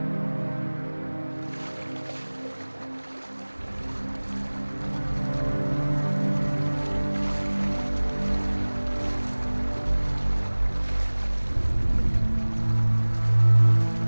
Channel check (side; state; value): both; inverted; correlation -1.00